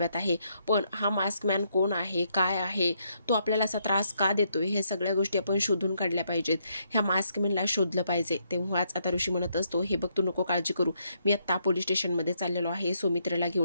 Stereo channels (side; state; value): both; inverted; correlation -0.75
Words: आहे. पण हा मास्कमॅन कोण आहे, काय आहे, तो आपल्याला असा त्रास का देतोय, हे सगळ्या गोष्टी आपण शोधून काढल्या पाहिजेत. ह्या मास्कमॅनला शोधलं पाहिजे. तेव्हाच आता ऋषी म्हणत असतो, हे बघ, तू नको काळजी करू, मी आत्ता पोलीस स्टेशनमध्ये चाललेलो आहे सुमित्रेला